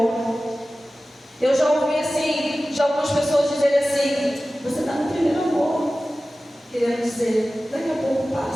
Eu já ouvi assim, de algumas pessoas dizerem assim: você está no primeiro amor. Querendo dizer, daqui a pouco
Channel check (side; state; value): both; normal; correlation 0.96